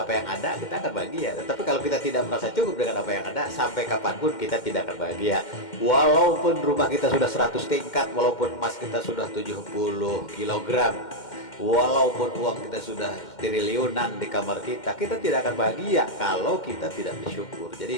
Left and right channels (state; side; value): late; right; 2.1 ms